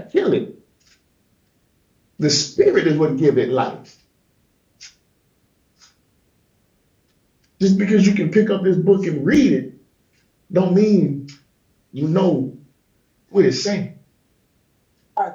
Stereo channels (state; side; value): identical; both; correlation 1.00